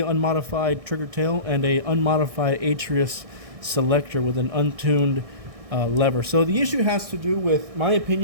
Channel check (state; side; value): late; left; 1.6 ms